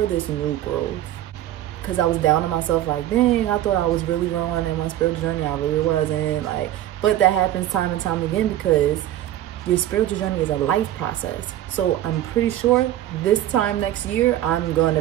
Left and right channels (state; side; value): quieter; left; 13.1 dB